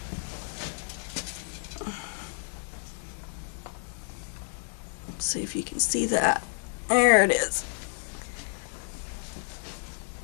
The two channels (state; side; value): silent; right; 57 dB below the other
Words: Let's see if you can see that. There it is.